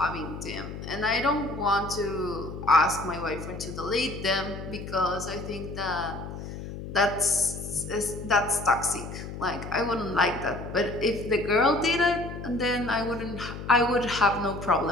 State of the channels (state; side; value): noise; left; hum, 9 dB below the sound